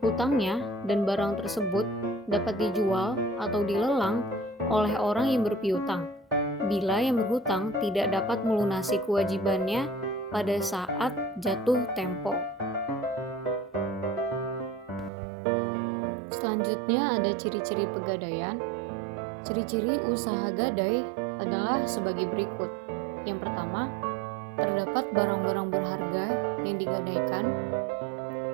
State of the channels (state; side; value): drops out; left; at 15.1 s